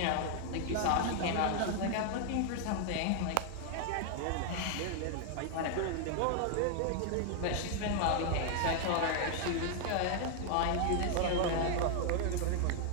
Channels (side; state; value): both; different; correlation 0.00